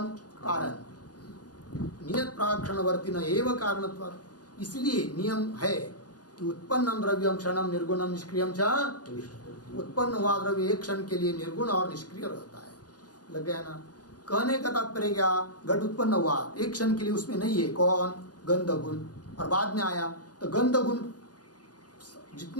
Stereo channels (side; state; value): right; late; 0.69 ms